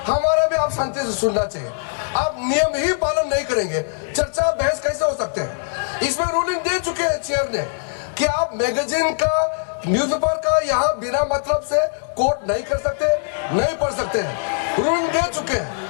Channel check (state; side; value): silent; right; digital silence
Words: हमारा भी आप शांति से सुनना चाहिए। आप नियम ही पालन नहीं करेंगे, चर्चा बहस कैसे हो सकते हैं? इसमें रूलिंग दे चुके हैं चेयर ने कि आप मैगजीन का, न्यूज़पेपर का यहाँ बिना मतलब से कोट नहीं कर सकते, नहीं पढ़ सकते हैं। रूलिंग दे चुके हैं।